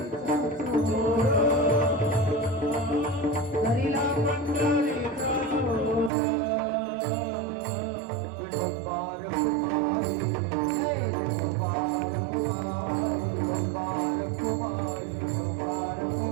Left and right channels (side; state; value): left; drops out; at 6.1 s